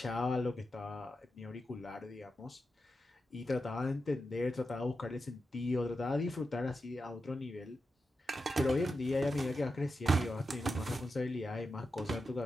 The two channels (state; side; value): normal; both; correlation 0.89